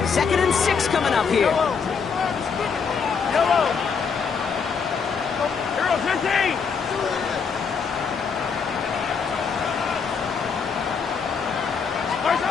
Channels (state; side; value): quieter; right; 5.9 dB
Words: 2nd and 6 coming up here.